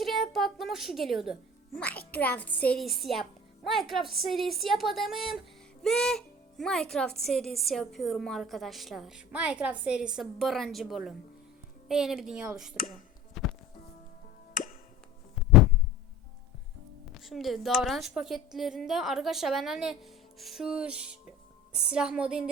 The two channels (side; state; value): both; normal; correlation 0.43